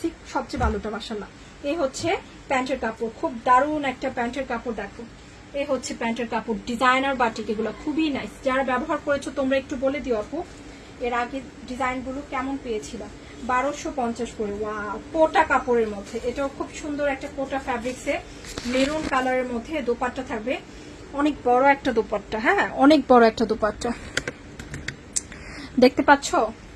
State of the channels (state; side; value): identical; both; correlation 1.00